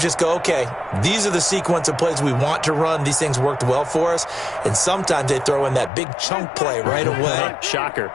just go, okay, these are the sequence of plays we want to run. These things worked well for us. And sometimes they throw in that big chunk play right away. Shocker.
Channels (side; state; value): right; drops out; at 5.9 s